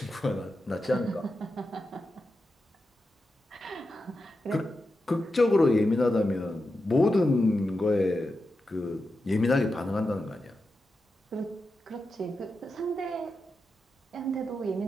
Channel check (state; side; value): normal; both; correlation 0.89